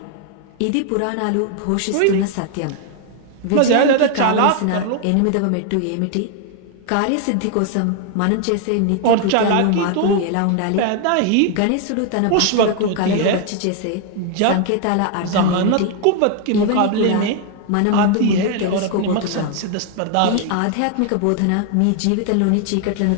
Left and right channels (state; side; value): different; both; correlation 0.00